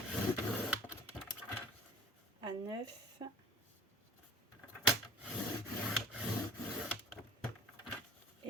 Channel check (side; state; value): both; normal; correlation 0.43